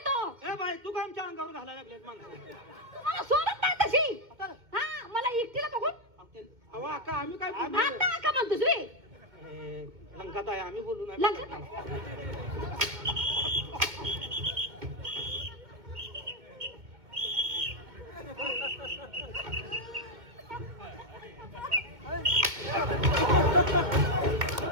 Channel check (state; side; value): late; left; 2.2 ms